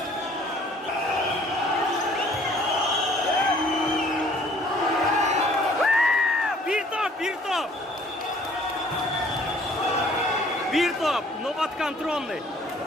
Bir top. Nokat kontrolный.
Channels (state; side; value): normal; both; correlation 0.57